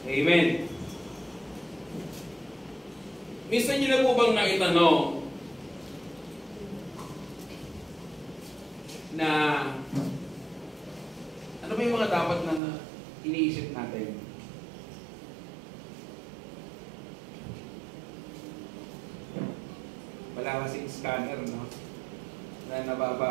Amen. Minsan nyo na po bang naitanong na ano ba yung mga dapat na iniisip natin? Wala kasing scanner, no? Na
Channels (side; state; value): left; drops out; at 12.6 s